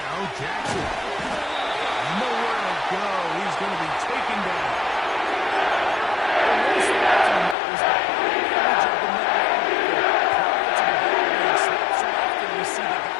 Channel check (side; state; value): right; drops out; at 7.6 s